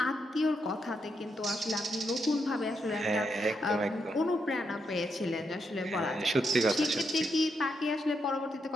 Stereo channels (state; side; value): normal; both; correlation 0.81